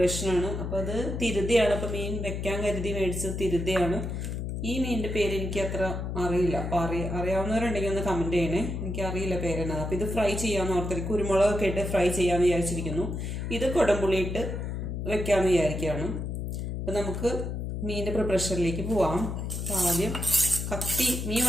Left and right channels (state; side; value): noise; left; hum, 4 dB below the sound